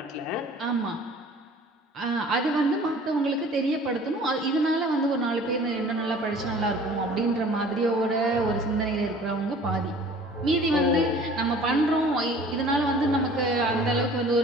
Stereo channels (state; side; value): normal; both; correlation 0.48